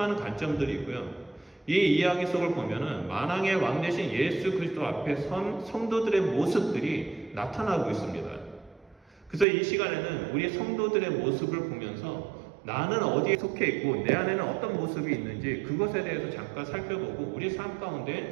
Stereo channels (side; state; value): left; drops out; at 9.5 s